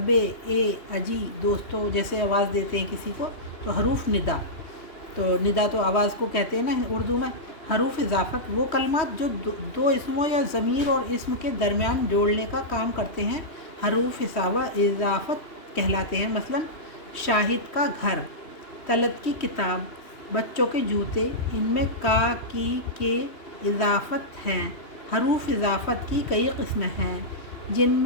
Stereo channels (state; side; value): late; right; 3.1 ms